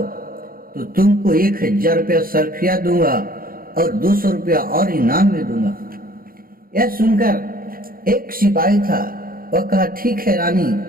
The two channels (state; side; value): late; left; 0.42 ms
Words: तो तुमको 1000 रुपया सरफिया दूंगा और 200 रुपया और इनाम में दूंगा। यह सुनकर एक सिपाही था, वह कहा ठीक है रानी,